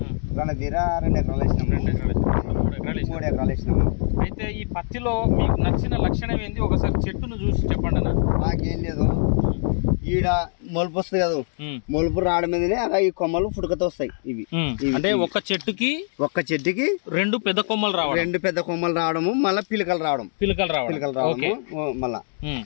రణధీర 2 ఎకరాలు వేసినాము, 3 ఎకరాలు వేసినాము. అయితే ఈ పత్తిలో మీకు నచ్చిన లక్షణం ఏంది? ఒకసారి చెట్టును చూసి చెప్పండి అన్న. మాకేం లేదు, ఈడ మొలుపు వస్తుంది కదా, మొలుపు రావడం మీదనే ఈ కొమ్మలు పుడకతో వస్తాయి. ఇవి అంటే ఒక్క చెట్టుకి 2 పెద్ద కొమ్మలు రావడం, 2 పెద్ద కొమ్మలు రావడము, మళ్ళీ పిలకలు రావడము. మళ్ళా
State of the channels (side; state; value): right; silent; digital silence